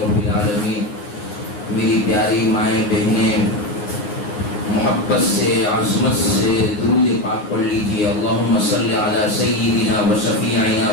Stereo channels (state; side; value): late; right; 9.6 ms